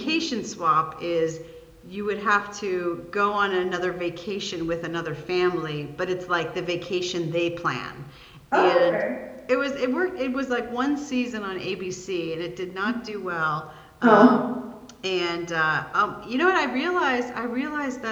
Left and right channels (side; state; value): both; identical; correlation 1.00